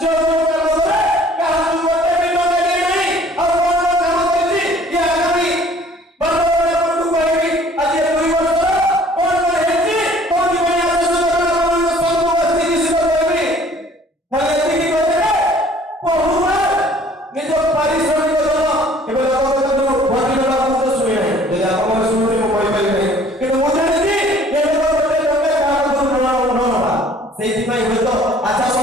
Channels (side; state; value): both; normal; correlation 0.54